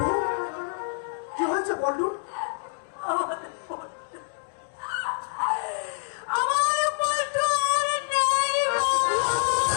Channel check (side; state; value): right; silent; 60 dB below the other